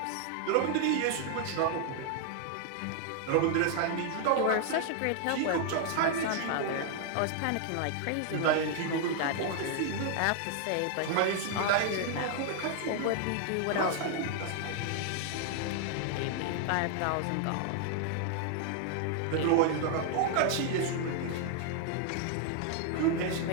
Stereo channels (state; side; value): different; both; correlation 0.00